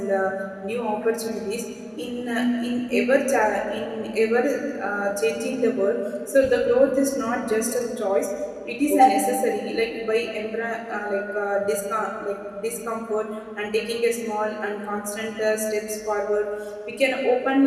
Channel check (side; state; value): both; identical; correlation 1.00